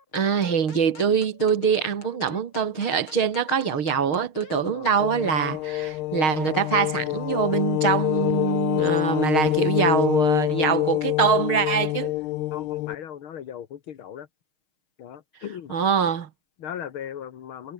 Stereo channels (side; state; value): right; late; 6.4 ms